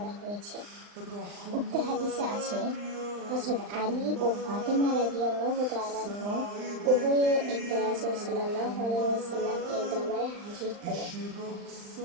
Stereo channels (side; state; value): left; late; 39 ms